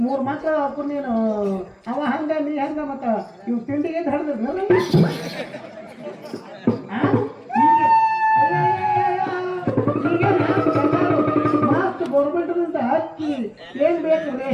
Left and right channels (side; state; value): both; identical; correlation 1.00